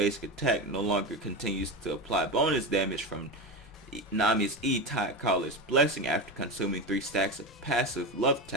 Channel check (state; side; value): normal; both; correlation 0.20